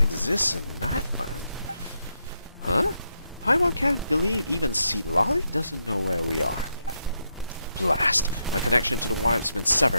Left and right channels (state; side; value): inverted; both; correlation -0.82